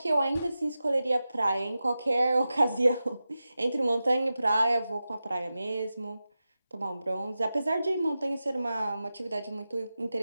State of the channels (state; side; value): inverted; both; correlation -0.93